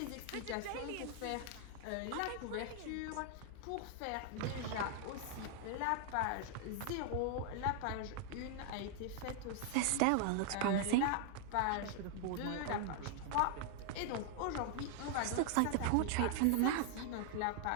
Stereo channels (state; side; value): different; both; correlation 0.00